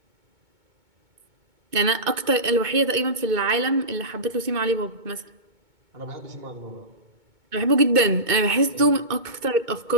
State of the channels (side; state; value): left; late; 2.2 ms